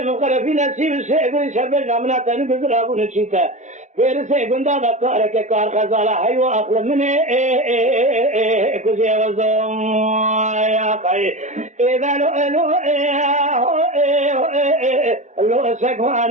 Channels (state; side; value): late; left; 0.34 ms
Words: مقرفين سيب الشيء شبه نامنا تاني بزر ابو نشيتا غير سيء گندا دكار كار خزالة حيو اخل منه كوزي وزوم يا قاي اذا لو